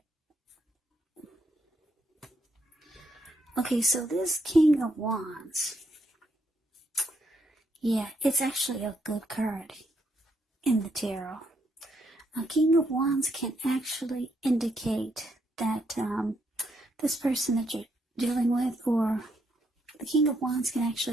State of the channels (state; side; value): normal; both; correlation 0.75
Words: Okay, so this King of Wands, yeah, it's actually a good card in the tarot. A King of Wands can actually indicate that this person that you're dealing with, or the King of Wands can